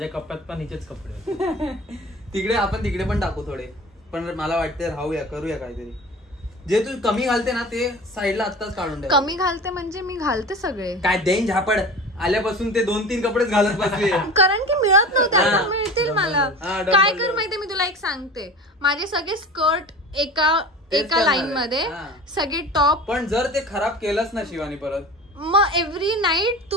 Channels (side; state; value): both; normal; correlation 0.36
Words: कप्प्यात पण हिचेच कपडे. तिकडे पण टाकू थोडे. पण मला वाटते राहूया, करूया काहीतरी. जे तू कमी घालते ना ते साईडला आत्ताच काढून ठेव. कमी घालते म्हणजे मी घालते सगळे. काय देईन झापड. आल्यापासून ते 2-3 कपडेच घालत बसले. कारण की मिळत नव्हते. आता मिळतील मला. काय कर माहितीये, मी तुला एक सांगते. माझे सगळे स्कर्ट एका लाईन मध्ये, सगळे टॉप. पण जर ते खराब केलंच ना शिवानी परत, मग एव्हरी नाईट